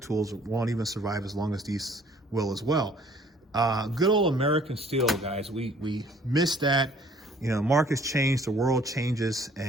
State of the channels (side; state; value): both; normal; correlation 0.57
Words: tools won't even survive as long as these will as well. Good old American steel, guys. We miss that. Markets change, the world changes,